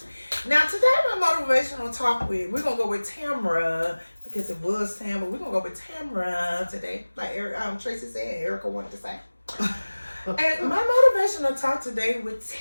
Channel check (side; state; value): both; inverted; correlation -1.00